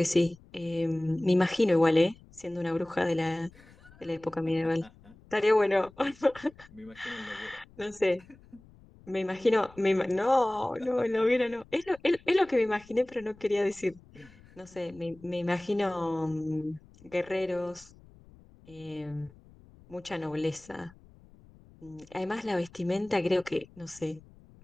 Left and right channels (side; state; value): left; noise; rumble, 25 dB below the sound